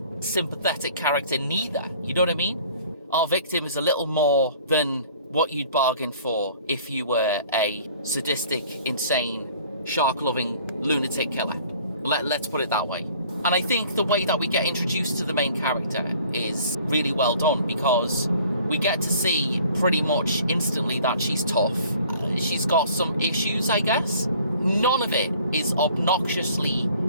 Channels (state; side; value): inverted; both; correlation -0.52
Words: sympathetic character neither. You know what I mean? Our victim is a little more than what you'd bargain for if you were a sadistic, insane shark-loving lunatic killer. Let's put it that way. And I think the way that we get introduced to the main character is really well done, because we get to see pretty much instantly that she's tough. She's got some issues, I guess. None of it is obnoxiously